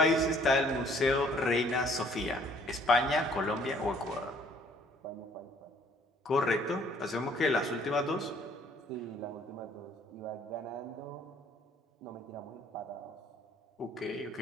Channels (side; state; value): both; normal; correlation 0.60